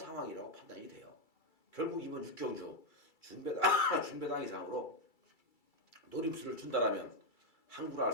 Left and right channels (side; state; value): right; late; 2.3 ms